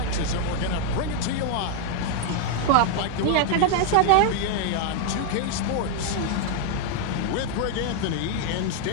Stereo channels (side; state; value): both; different; correlation 0.01